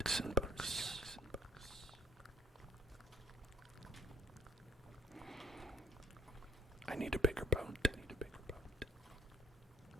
books. I need a bigger boat.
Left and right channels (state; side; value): normal; both; correlation 0.58